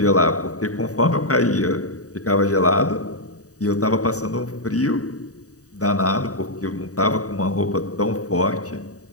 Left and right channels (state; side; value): late; right; 0.66 ms